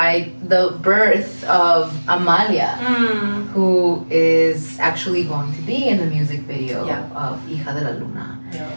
the birth of Amalia, who is actually going to be in the music video of Hija De La Luna.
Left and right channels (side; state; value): both; inverted; correlation -1.00